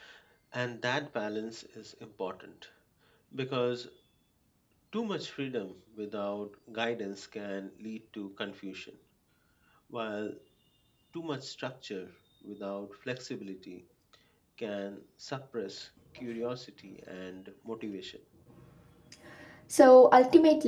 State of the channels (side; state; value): both; identical; correlation 1.00